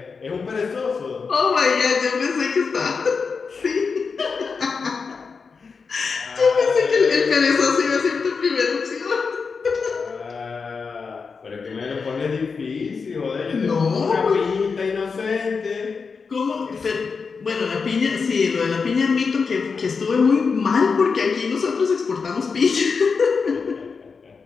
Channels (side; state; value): right; quieter; 5.1 dB